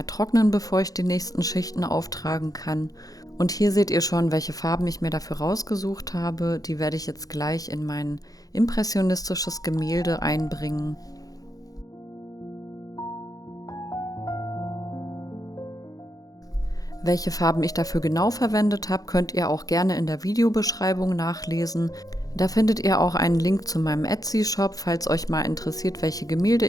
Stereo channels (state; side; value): late; right; 0.18 ms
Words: trocknen, bevor ich die nächsten Schichten auftragen kann. Und hier seht ihr schon, welche Farben ich mir dafür rausgesucht habe. Die werde ich jetzt gleich in mein impressionistisches Gemälde einbringen. Welche Farben ich dafür genau verwendet habe, könnt ihr auch gerne in der Videobeschreibung nachlesen. Da findet ihr auch einen Link zu meinem Etsy-Shop. Falls euch mal interessiert, welche Gemälde